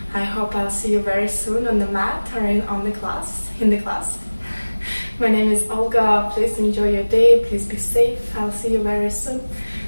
I hope I'll see you very soon on the mat or in the class. My name is Olga. Please enjoy your day. Please be safe. I'll see you very soon.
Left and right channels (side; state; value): both; inverted; correlation -1.00